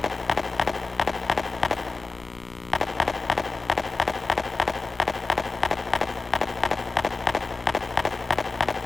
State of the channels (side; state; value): right; quieter; 3.7 dB